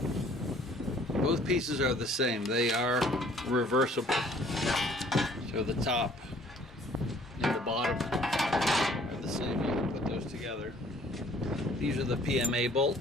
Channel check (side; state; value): both; normal; correlation 0.57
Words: both pieces are the same. They are reversible. So the top and the bottom are the same. You can put those together. These are the PMA